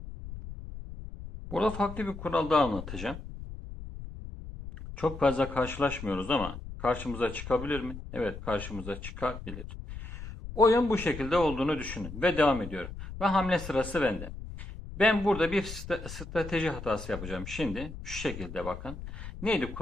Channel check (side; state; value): left; noise; rumble, 10 dB below the sound